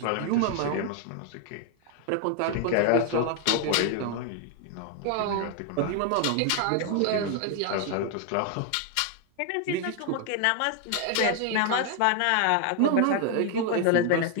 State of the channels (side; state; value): both; different; correlation 0.00